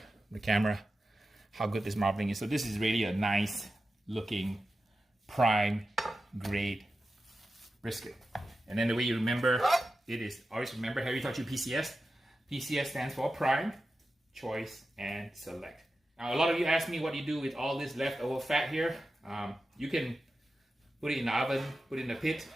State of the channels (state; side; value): normal; both; correlation 0.92